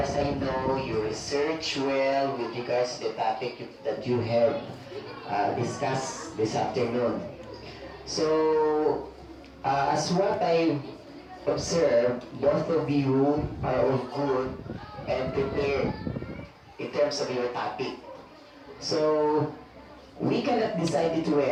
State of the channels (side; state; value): both; identical; correlation 1.00